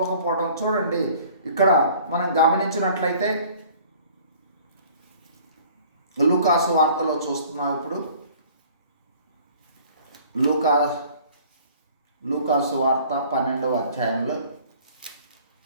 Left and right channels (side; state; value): both; inverted; correlation -0.51